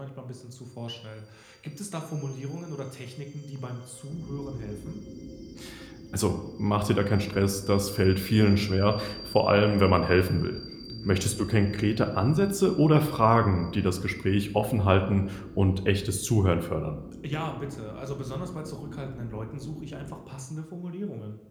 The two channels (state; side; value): identical; both; correlation 1.00